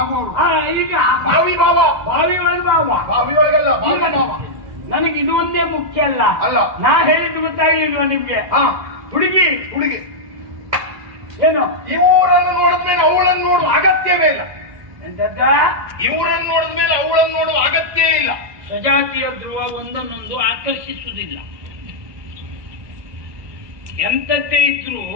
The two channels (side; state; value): left; late; 1.3 ms